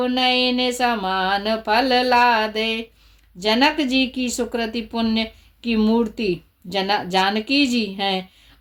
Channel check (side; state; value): both; identical; correlation 1.00